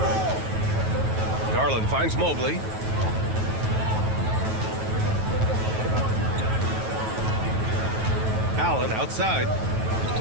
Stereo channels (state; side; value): late; left; 9.2 ms